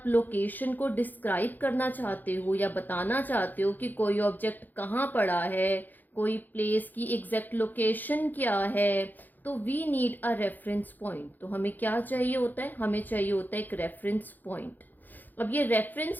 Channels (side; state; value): right; late; 0.086 ms